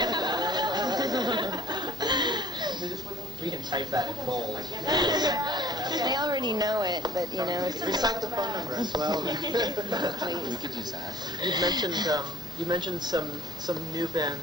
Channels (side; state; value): both; normal; correlation 0.54